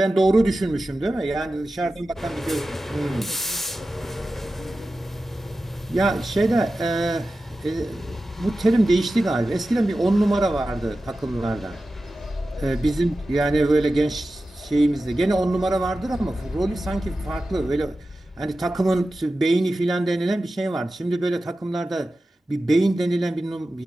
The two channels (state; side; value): normal; both; correlation 0.94